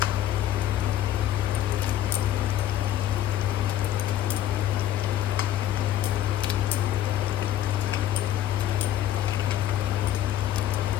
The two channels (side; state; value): right; quieter; 12.1 dB